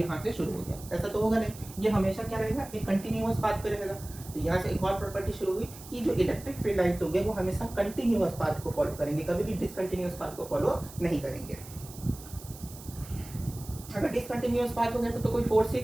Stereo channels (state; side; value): noise; right; hiss, 17 dB below the sound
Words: से शुरू हो गया, ऐसा तो होगा नहीं, ये हमेशा क्या रहेगा, एक कंटिन्यूअस पाथ पे रहेगा। तो यहाँ से एक और प्रॉपर्टी शुरू हुई कि जो इलेक्ट्रिक फील्ड लाइन्स होंगे वो हमेशा कंटिन्यूअस पाथ को फॉलो करेंगे, कभी भी डिसकंटिन्यूअस पाथ को फॉलो नहीं करेंगे। अगर डिसकंटिन्यूअस पाथ हो गया तो कोई फोर्स से